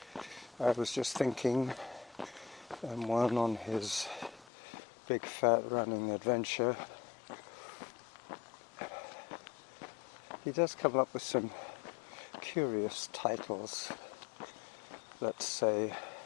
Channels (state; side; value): drops out; right; at 4.5 s